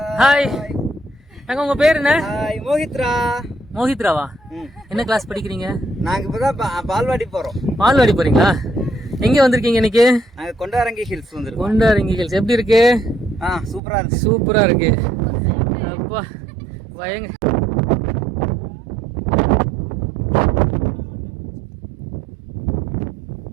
ஹாய் அக்கா. உங்க பேர் என்ன? மோஹித்ரா. மோஹித்ராவா? என்ன கிளாஸ் படிக்கிறீங்க? நாங்க இப்பதான் பால்வாடி போறோம். பால்வாடி போறீங்களா? எங்க வந்திருக்கீங்க இன்னைக்கு? நாங்க கொண்டாரங்கி ஹில்ஸ் வந்திருக்கோம். கொண்டாரங்கி ஹில்ஸ் எப்படி இருக்கு? சூப்பரா இருக்கு. சூப்பரா இருக்கு. அப்பா பயங்க.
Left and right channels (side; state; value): left; drops out; at 13.8 s